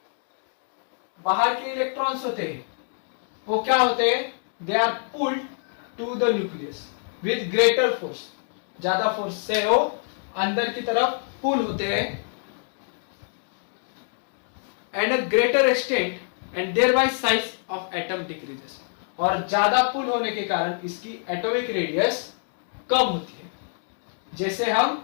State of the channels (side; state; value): right; silent; 61 dB below the other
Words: बाहर के इलेक्ट्रॉन्स होते हैं वो क्या होते हैं, they are pulled to the nucleus with greater force, ज्यादा फोर्स से वो अंदर की तरफ पुल होते हैं and a greater extent and thereby size of atom decreases. और ज्यादा पुल होने के कारण इसकी एटॉमिक रेडियस कम होती है। जैसे हम